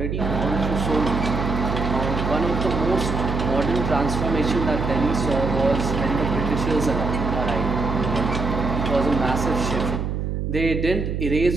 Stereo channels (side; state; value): right; noise; hum, 2 dB below the sound